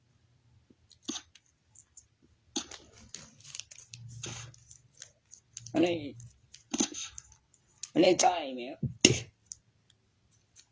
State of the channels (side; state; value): both; identical; correlation 1.00